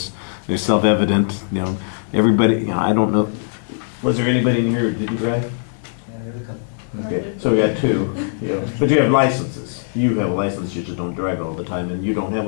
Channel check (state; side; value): silent; right; 66 dB below the other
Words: They're self-evident. You know, everybody, I don't know. Was there anybody in here who didn't drive? yeah, there's a couple. Okay, so we got 2. But you have licenses. You have a license, you just don't drive all the time, and you don't have a